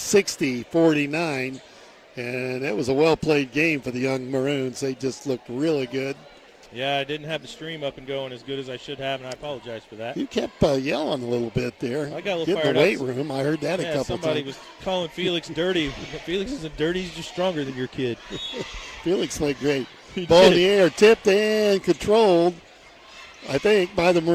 And that was a well-played game for the young Maroons. They just looked really good. Yeah, I didn't have the stream up and going as good as I should have, and I apologize for that. You kept yelling a little bit there. I got a little Get in fired the weight up. room. I heard that a couple times. Somebody was calling Felix dirty. Felix isn't dirty. He's just stronger than your kid. Felix played great. He Ball in did. the air, tipped and controlled, I think, by the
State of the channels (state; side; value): identical; both; correlation 1.00